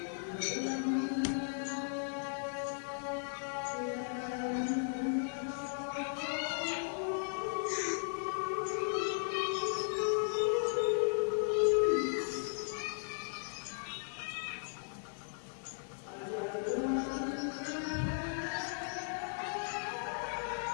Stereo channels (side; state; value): right; silent; 53 dB below the other